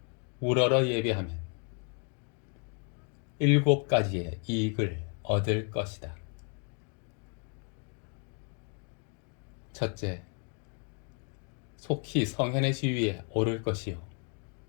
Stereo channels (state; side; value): quieter; right; 39.8 dB